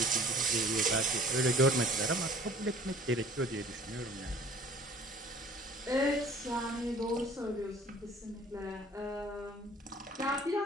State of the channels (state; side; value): normal; both; correlation 0.49